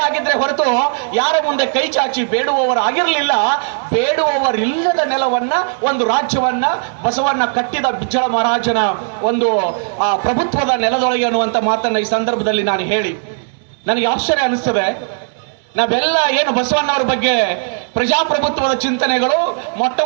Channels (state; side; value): silent; left; digital silence